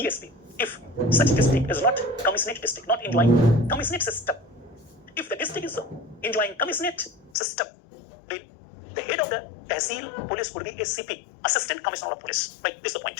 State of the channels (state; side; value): drops out; right; at 7.3 s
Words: If such district is not commissionate district, not enjoying commissionate system, if the district is enjoying commissionate system, then the head of the tehsil police would be a CP, Assistant Commissioner of Police. Right, this is the